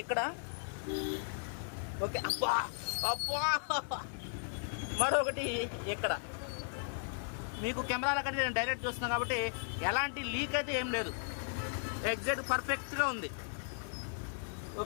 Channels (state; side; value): silent; right; digital silence